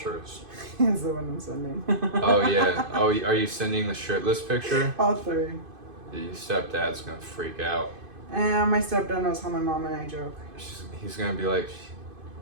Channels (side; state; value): left; late; 2.5 ms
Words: Here's the one I'm sending. Oh yeah. Oh, are you sending the shirtless picture? All three. Your stepdad's gonna freak out. And my stepdad knows how my mom and I joke. He's gonna be like,